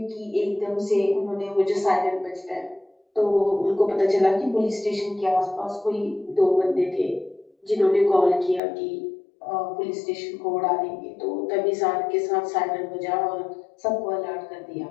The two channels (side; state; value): right; drops out; at 8.6 s